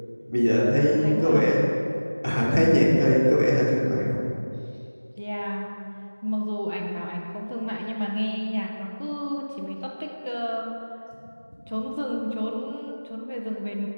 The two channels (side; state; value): both; inverted; correlation -1.00